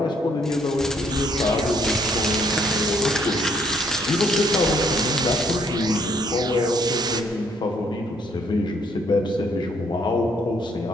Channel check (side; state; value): both; normal; correlation 0.66